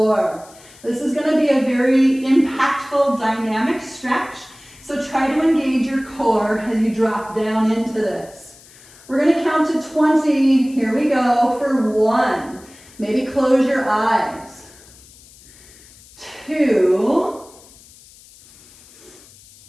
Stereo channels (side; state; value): left; noise; hiss, 24 dB below the sound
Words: This is gonna be a very impactful, dynamic stretch. So try to engage your core as you drop down into this. We're gonna count to 20. Here we go for 1. Maybe close your eyes. 2,